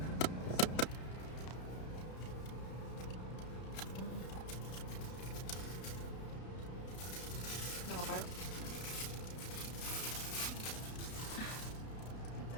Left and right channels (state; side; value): late; right; 32 ms